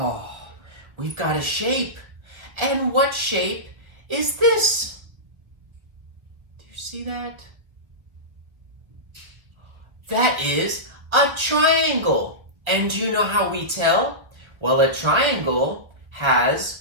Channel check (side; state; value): left; late; 1.7 ms